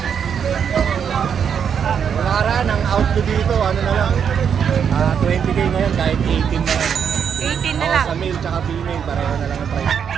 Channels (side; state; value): left; quieter; 7.6 dB